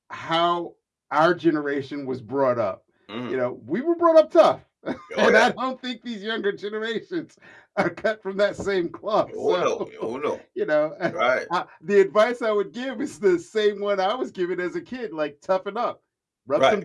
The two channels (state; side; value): identical; both; correlation 1.00